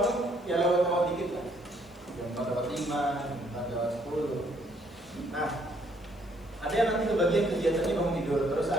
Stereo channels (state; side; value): noise; left; hiss, 30 dB below the sound